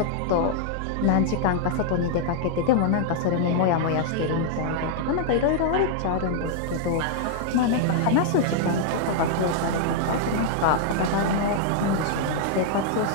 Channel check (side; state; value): both; different; correlation -0.01